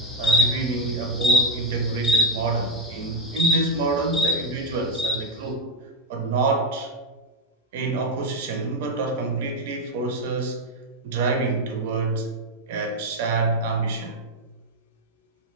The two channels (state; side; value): normal; both; correlation 0.05